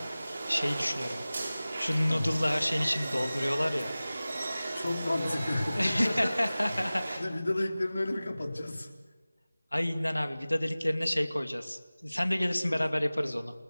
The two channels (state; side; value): inverted; both; correlation -0.98